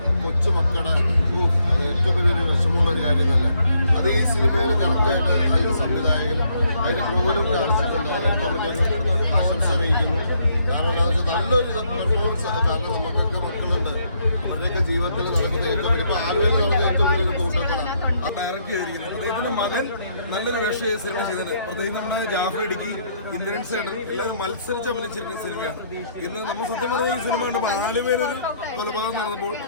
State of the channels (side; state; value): both; inverted; correlation -0.71